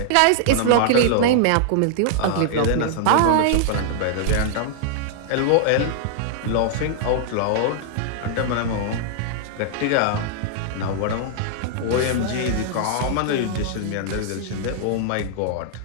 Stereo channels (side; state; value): both; different; correlation -0.01